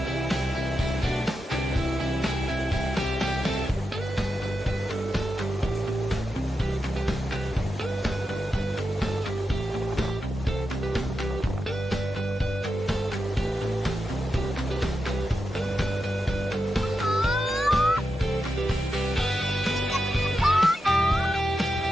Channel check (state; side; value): normal; both; correlation 0.88